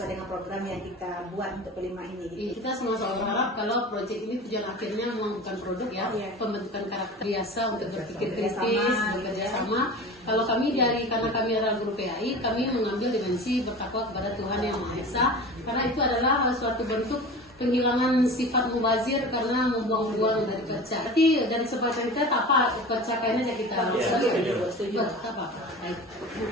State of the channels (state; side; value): normal; both; correlation 0.35